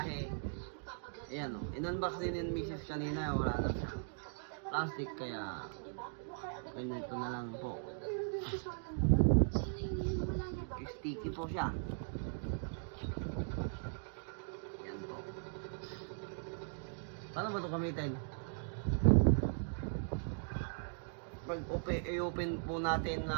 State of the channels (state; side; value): silent; left; digital silence